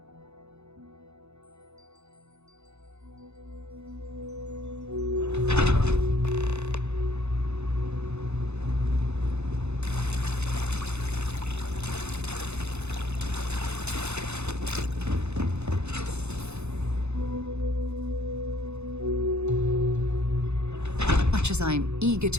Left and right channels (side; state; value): left; late; 0.81 ms